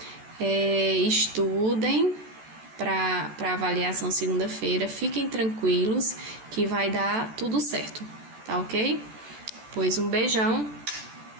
Estudem para avaliação segunda-feira, fiquem tranquilos que vai dar tudo certo, tá ok? Pois um beijão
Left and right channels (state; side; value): late; left; 14 ms